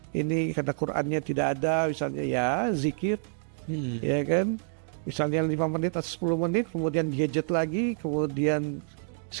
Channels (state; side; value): silent; left; 59 dB below the other